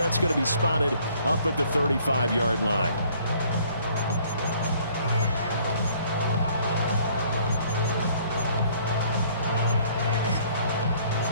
going to be spotted up at the 35-yard line.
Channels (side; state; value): both; inverted; correlation -0.60